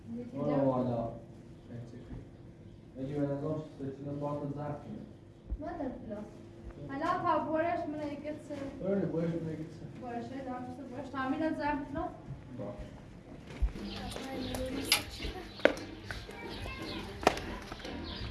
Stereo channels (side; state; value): both; identical; correlation 1.00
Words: برو والا اگه به نظرش سچینه باید زرد کنه ما در پلاس حالا تا بورش من یکت سه برنه بایش بگید سه بورشه دارمسته بورش تامین زرد کنم